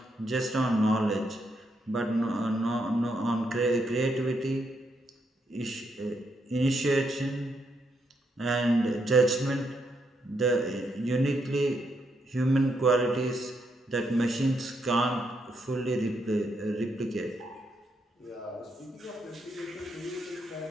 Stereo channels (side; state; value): both; normal; correlation 0.78